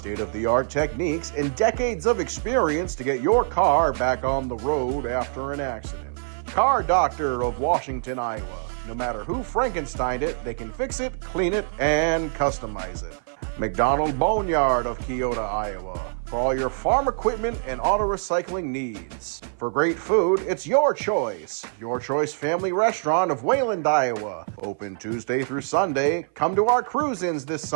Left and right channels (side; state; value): left; silent; 55 dB below the other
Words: techniques and decades of experience to get your car back on the road after an accident. Car Doctor of Washington, Iowa. No matter who Frankensteined it, they can fix it, clean it, and customize it. McDonald Boneyard of Keota, Iowa, for all your farm equipment and auto recycling needs. For great food, it's Your Choice. Your Choice Family Restaurant of Wayland, Iowa. Open Tuesday through Sunday. Come to our cruise-ins this